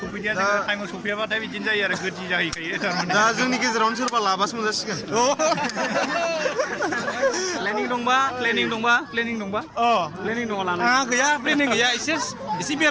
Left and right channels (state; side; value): identical; both; correlation 1.00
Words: सफैदिया जोङो टाइमाव सफैयाबाथाय बिदिनो जायो आरो गोदि जाहैखायो दा जोंनि गेजेरावनो सोरबा लाबासो मोनजासिगोन प्लेनिं दंबा प्लेनिं दंबा आंहा गैया प्लेनिं गैया एसे